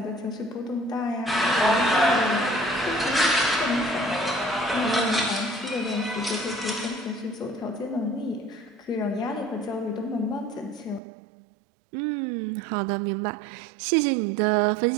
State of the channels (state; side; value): drops out; left; at 11.0 s